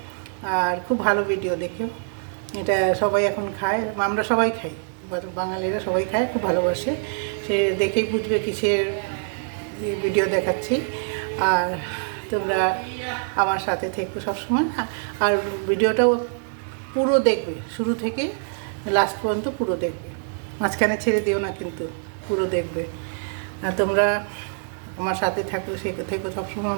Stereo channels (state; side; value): silent; left; digital silence